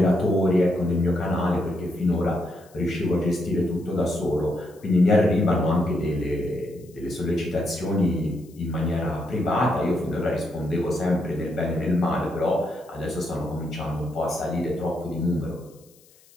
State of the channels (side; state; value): left; noise; hiss, 29 dB below the sound